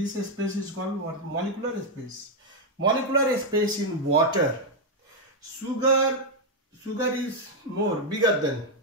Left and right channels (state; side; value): normal; both; correlation 0.01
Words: space is called what? Molecular space. Molecular space in water. Sugar is bigger